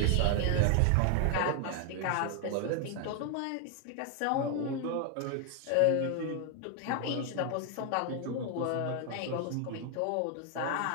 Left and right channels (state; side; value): different; both; correlation 0.00